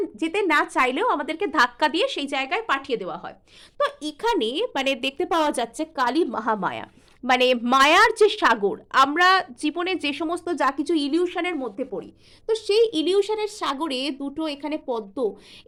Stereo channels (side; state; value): both; identical; correlation 1.00